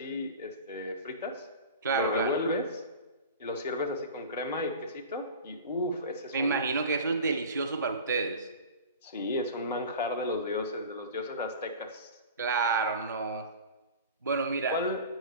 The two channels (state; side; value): inverted; both; correlation -0.37